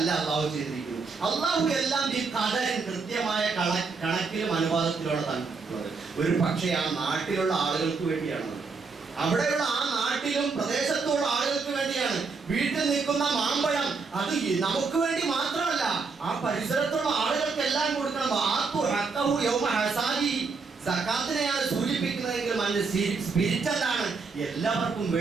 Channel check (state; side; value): quieter; left; 4.6 dB